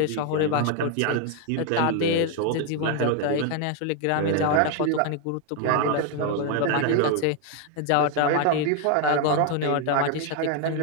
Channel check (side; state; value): both; different; correlation 0.01